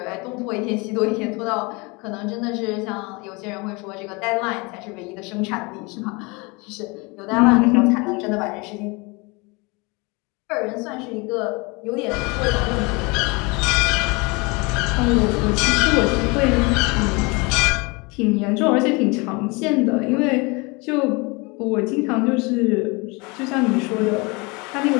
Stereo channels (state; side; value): quieter; right; 27.6 dB